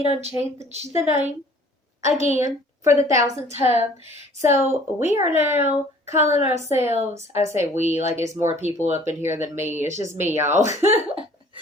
done changed the name again for the 1000th time. So we are now calling ourselves, I say we, like it's more people up in here than me. It's just me, y'all.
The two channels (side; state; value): both; normal; correlation 0.53